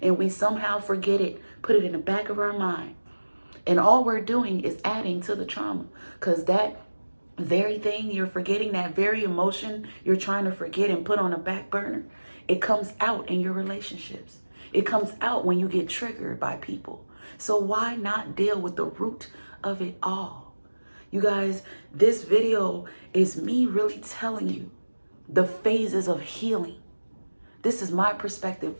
we somehow forget it, put it in the back of our mind. And all we're doing is adding to the trauma, because that very thing you're forgetting, that very emotion you're trying to forget and put on a back burner, it comes out in your relationships. It comes out when you get triggered by people. So why not deal with the root of it all? You guys, this video is me really telling you the phases of healing. This is my perspective.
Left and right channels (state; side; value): inverted; both; correlation -1.00